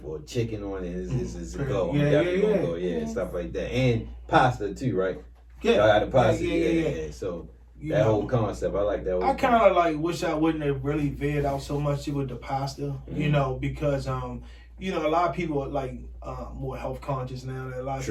or chicken on it is a go. I'm definitely gonna go, stuff like that. And pasta too, right? Yeah. I got the pasta, So that whole concept, I like that. I kind of like wish I wouldn't have really veered out so much with the pasta, because a lot of people are like more health conscious now. That a lot of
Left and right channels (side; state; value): both; identical; correlation 1.00